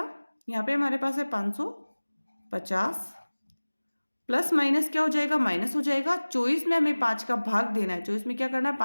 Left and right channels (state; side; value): inverted; both; correlation -1.00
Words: यहाँ पे हमारे पास है 550 प्लस माइनस क्या हो जाएगा, माइनस हो जाएगा। 24 में हमें 5 का भाग देना है, 24 में क्या करना है,